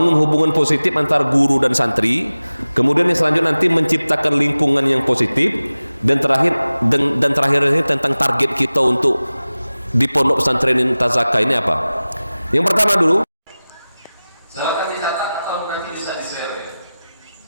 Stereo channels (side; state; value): both; inverted; correlation -0.97